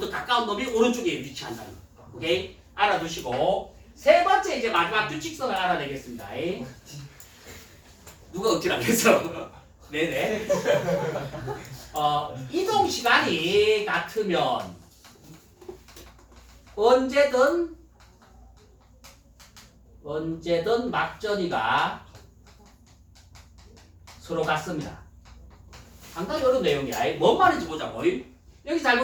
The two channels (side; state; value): both; identical; correlation 1.00